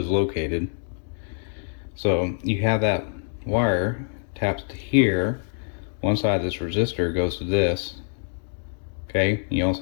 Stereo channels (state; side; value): silent; right; 62 dB below the other